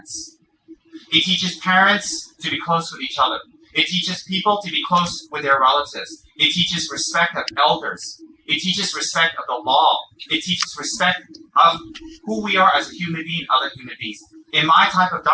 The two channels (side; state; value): both; identical; correlation 1.00